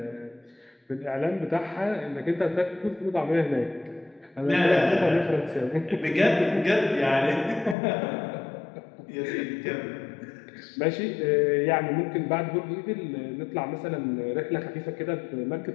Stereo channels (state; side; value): drops out; right; at 7.8 s